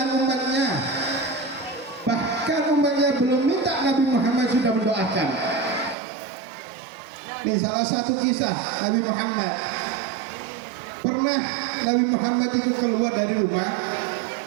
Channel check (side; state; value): left; drops out; at 6.0 s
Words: umatnya. Bahkan umatnya belum minta, Nabi Muhammad sudah mendoakan. Ini salah satu kisah Nabi Muhammad. Pernah Nabi Muhammad itu keluar dari rumah.